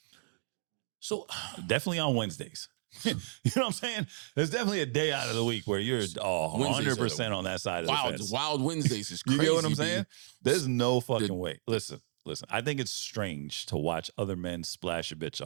So definitely on Wednesdays. You know what I'm saying? There's definitely a day out of the week where you're 100% on that side of the fence. Wild Wednesdays is crazy. You know what I'm saying? B. There's no fucking way. Listen. I think it's strange to watch other men splash a bitch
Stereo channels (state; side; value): silent; left; digital silence